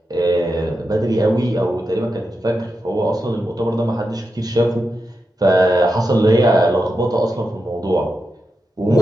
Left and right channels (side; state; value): both; normal; correlation 0.88